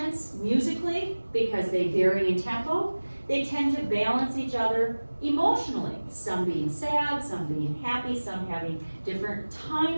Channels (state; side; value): inverted; both; correlation -1.00